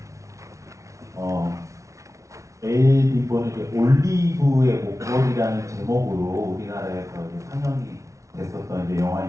엘빈보는 이제 올리브의 목걸이라는 제목으로 우리나라에서 이제 상영이 됐었던 이제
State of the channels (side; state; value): left; late; 0.15 ms